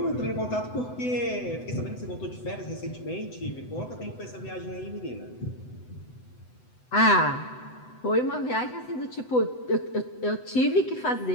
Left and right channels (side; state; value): right; late; 7.9 ms